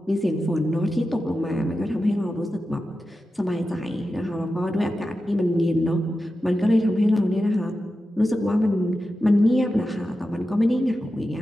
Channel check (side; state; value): both; normal; correlation 0.92